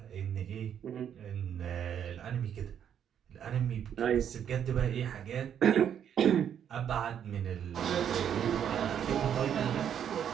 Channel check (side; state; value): left; quieter; 9.0 dB